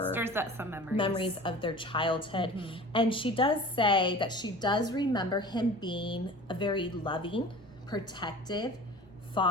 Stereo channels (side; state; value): both; normal; correlation 0.40